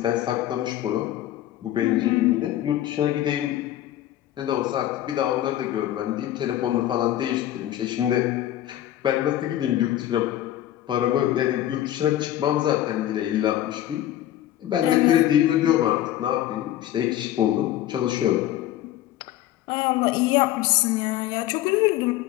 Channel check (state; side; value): quieter; right; 13.0 dB